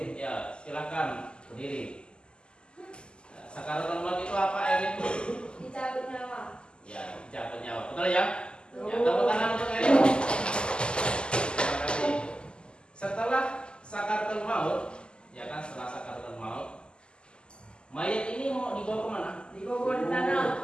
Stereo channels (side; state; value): right; late; 0.049 ms